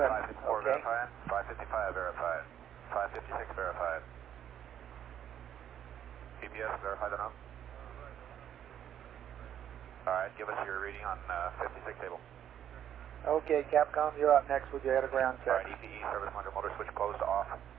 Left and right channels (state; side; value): quieter; left; 10.0 dB